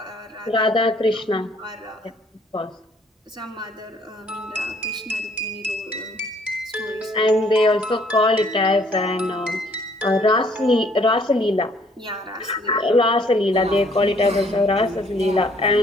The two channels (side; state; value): both; normal; correlation 0.62